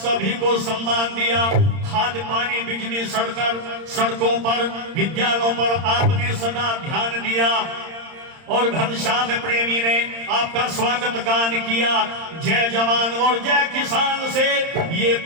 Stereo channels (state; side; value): late; left; 31 ms